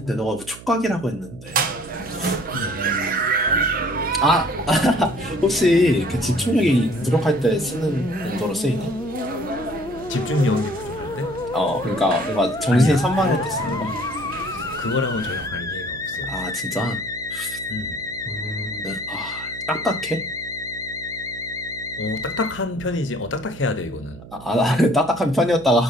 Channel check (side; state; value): right; noise; hum, 17 dB below the sound